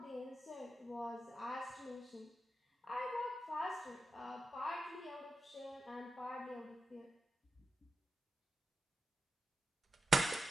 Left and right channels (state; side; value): normal; both; correlation 0.90